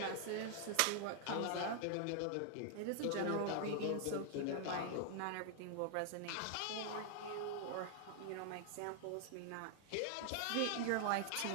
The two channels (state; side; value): different; both; correlation 0.00